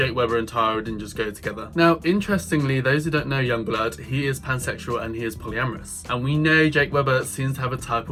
Webber and Tyra didn't just go together. Now, interestingly, those who don't know Yungblud, he is pansexual and he is polyamorous. And we know Jake Webber seems to have a type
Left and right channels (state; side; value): identical; both; correlation 1.00